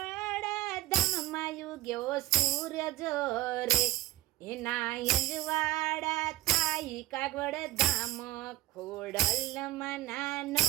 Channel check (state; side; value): quieter; left; 16.6 dB